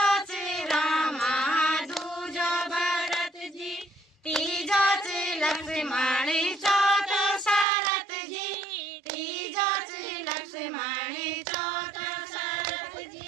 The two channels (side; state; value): left; drops out; at 7.7 s